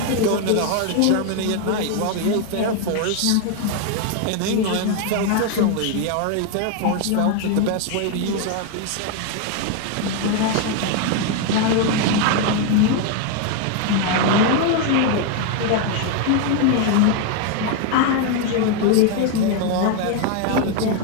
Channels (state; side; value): different; both; correlation 0.01